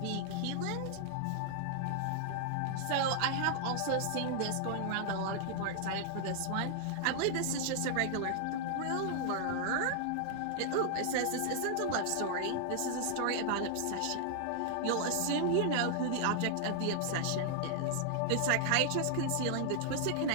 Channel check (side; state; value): both; different; correlation 0.00